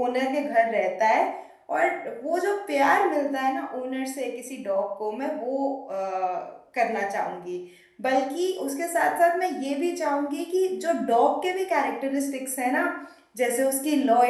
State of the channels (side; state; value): both; identical; correlation 1.00